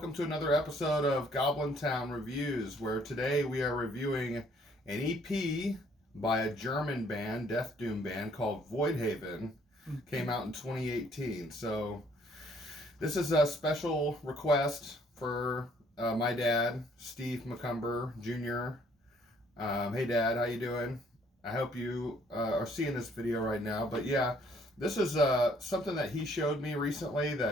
to another episode of Goblin Town Reviews, where today we are reviewing an EP by a German band, Deathdoom band, called Voidhaven. Came out in 2018. So this is a special request for my dad, Steve McCumber Jr. Hey, Dad, how you doing? I hope you are seeing this video right now. But yeah, this is something that he showed me recently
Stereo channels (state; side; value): normal; both; correlation 0.63